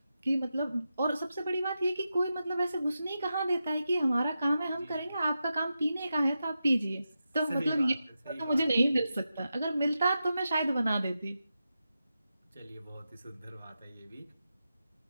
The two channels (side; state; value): both; inverted; correlation -0.89